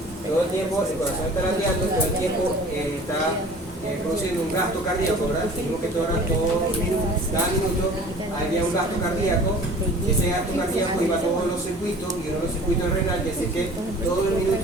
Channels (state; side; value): normal; both; correlation 0.45